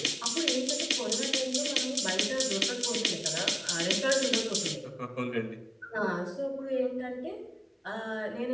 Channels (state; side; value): identical; both; correlation 1.00